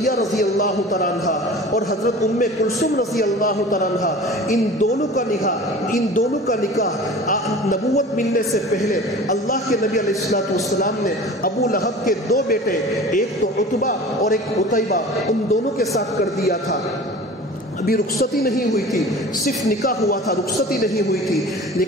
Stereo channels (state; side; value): normal; both; correlation 0.40